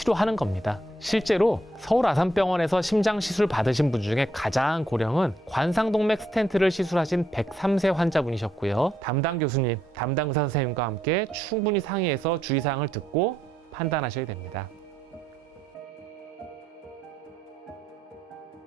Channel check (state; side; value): normal; both; correlation 0.76